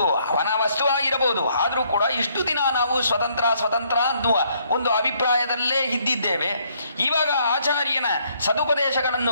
ಅವನ ವಸ್ತುವಾಗಿರಬಹುದು, ಆದರೂ ಕೂಡ ಇಷ್ಟು ದಿನ ನಾವು ಸ್ವತಂತ್ರ ಅನ್ನುವ ಒಂದು ಅಭಿಪ್ರಾಯದಲ್ಲೇ ಇದ್ದಿದ್ದೇವೆ. ಇವಾಗ ಆಚಾರ್ಯನ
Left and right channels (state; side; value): inverted; both; correlation -0.69